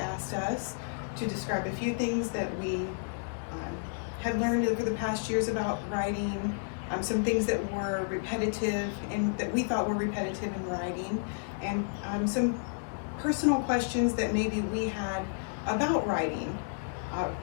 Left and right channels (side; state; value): right; silent; digital silence